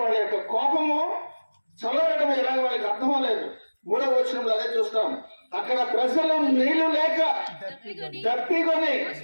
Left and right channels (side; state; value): both; inverted; correlation -1.00